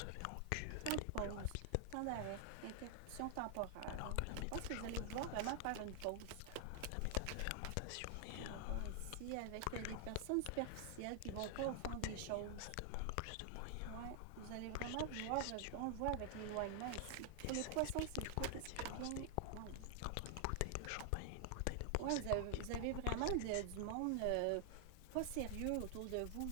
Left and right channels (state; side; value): different; both; correlation 0.00